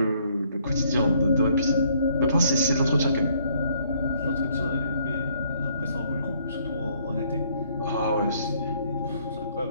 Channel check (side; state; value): both; inverted; correlation -0.66